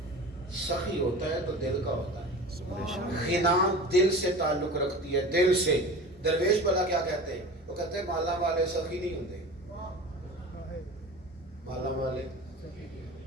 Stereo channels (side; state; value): both; normal; correlation 0.35